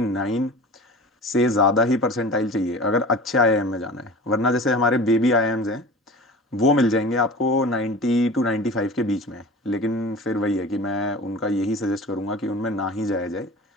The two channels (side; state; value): both; normal; correlation 0.38